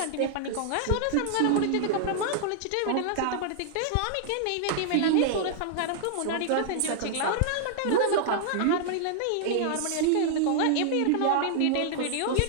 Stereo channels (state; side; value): different; both; correlation -0.01